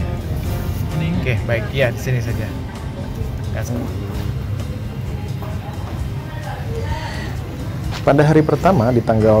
Oke, baik, ya di sini saja. Pada hari pertama di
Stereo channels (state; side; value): identical; both; correlation 1.00